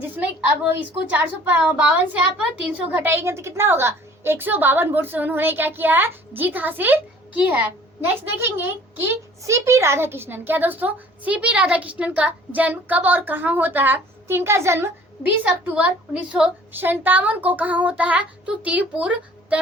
अब इसको 452 से आप 300 घटाएंगे तो कितना होगा, 152 वोट से उन्होंने क्या किया है, जीत हासिल की है। नेक्स्ट देखेंगे कि सीपी राधाकृष्णन, क्या दोस्तों, सीपी राधाकृष्णन का जन्म कब और कहाँ होता है, तो इनका जन्म 20 अक्टूबर 1957 को कहाँ होता है, तो तिरुपुर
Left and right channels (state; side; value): normal; both; correlation 0.51